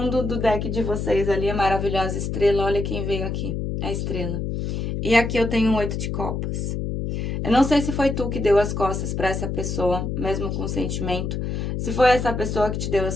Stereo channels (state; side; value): noise; left; hum, 2 dB below the sound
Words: do deck de vocês ali, a maravilhosa estrela. Olha quem veio aqui, a estrela. E aqui eu tenho um 8 de copas. Eu não sei se foi tu que deu as costas para essa pessoa, mesmo com sentimento. Se foi essa pessoa que te deu